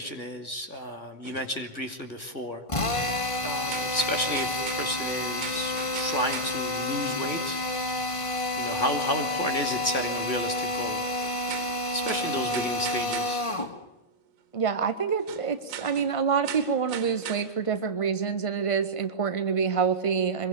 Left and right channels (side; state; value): right; late; 1.5 ms